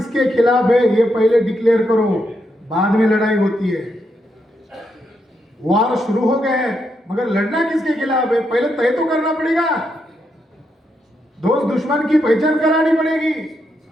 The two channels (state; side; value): normal; both; correlation 0.81